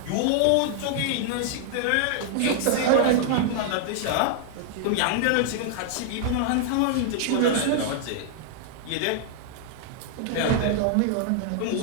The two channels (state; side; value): different; both; correlation -0.01